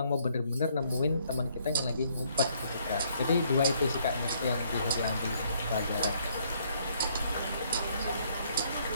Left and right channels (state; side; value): inverted; both; correlation -0.67